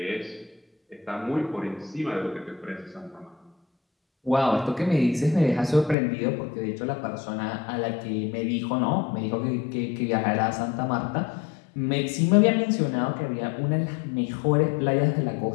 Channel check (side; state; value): right; drops out; at 6.0 s